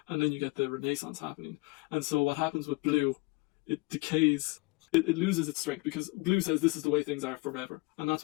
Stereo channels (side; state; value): right; quieter; 25.5 dB